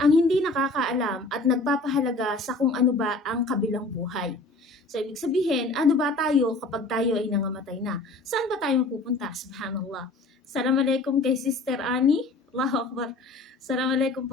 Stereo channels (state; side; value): quieter; right; 3.1 dB